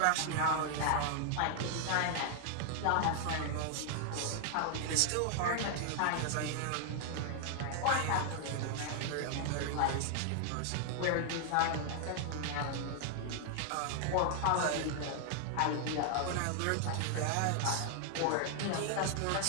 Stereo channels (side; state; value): both; different; correlation 0.00